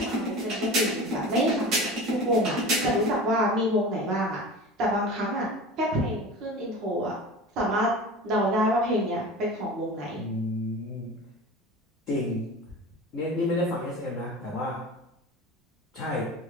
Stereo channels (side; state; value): both; normal; correlation 0.34